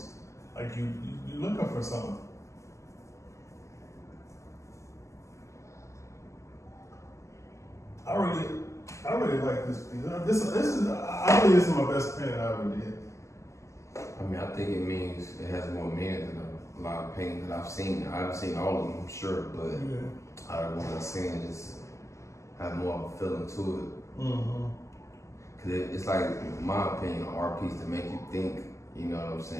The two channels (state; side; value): late; right; 0.14 ms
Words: Like you're looking for something. I really like this piece. I believe this is my best painting I ever did. I mean, I think it means it has more meaning than a lot of paintings that I've seen. I haven't seen all of them, I'm sure, but out of the ones I've seen, just have more of a feeling to it. Mm-hmm. Cause it's like, in my opinion, an art piece to make you think. You know what I'm